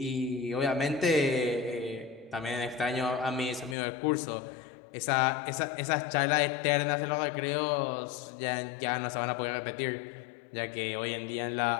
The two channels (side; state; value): right; drops out; at 3.8 s